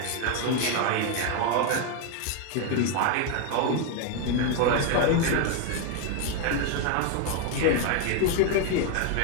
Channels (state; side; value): different; both; correlation 0.01